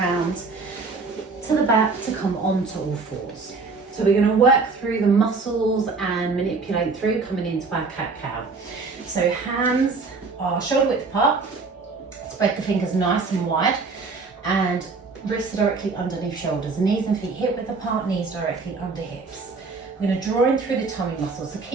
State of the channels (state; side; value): quieter; left; 4.2 dB